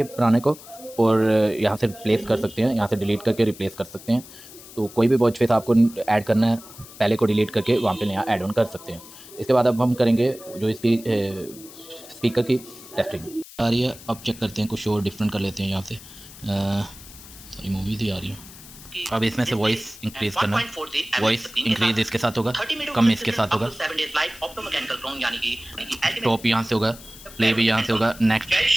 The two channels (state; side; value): noise; left; hiss, 18 dB below the sound